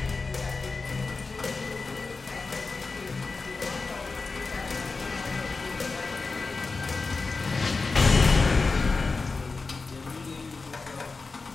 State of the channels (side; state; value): right; quieter; 4.1 dB